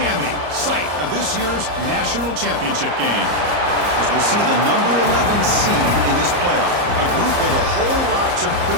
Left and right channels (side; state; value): left; late; 34 ms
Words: site of this year's national championship game. As we'll see the number 11 seed in this playoff, a group with a whole lot to